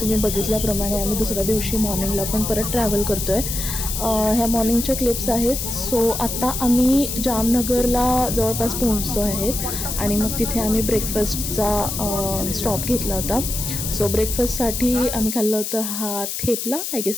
बघितल्याप्रमाणे आम्ही दुसऱ्या दिवशी मॉर्निंगला पण परत ट्रॅव्हल करतो आहे. ह्या मॉर्निंगच्या क्लिप्स आहेत. सो आत्ता आम्ही जामनगरला जवळपास पोहोचतो आहेत आणि मग तिथे आम्ही ब्रेकफास्टचा स्टॉप घेतला होता. सो ब्रेकफास्टसाठी आम्ही खाल्लं होतं हा थेपला, आय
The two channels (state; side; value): noise; left; hiss, 4 dB below the sound